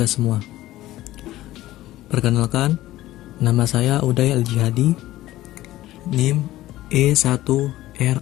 semua. Perkenalkan, nama saya Uday Al-Jihadi, NIM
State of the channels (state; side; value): quieter; right; 15.7 dB